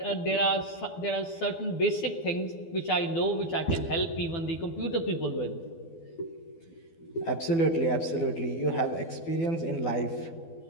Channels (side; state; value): right; late; 12 ms